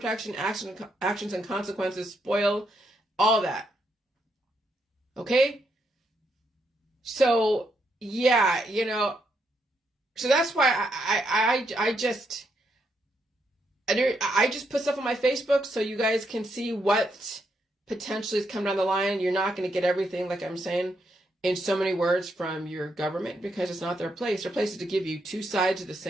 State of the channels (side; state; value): both; normal; correlation 0.78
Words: actions and consequences, spoil, all that. Okay? So, yeah, so that's why I just put stuff on my Facebook so you guys can see what potentially is coming down the line. You're not going to get everything, like I'm saying, in so many words from your government because it's not their place. Their place is to give you two sides of the